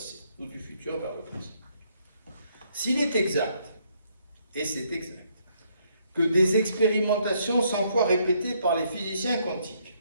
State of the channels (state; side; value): inverted; both; correlation -0.71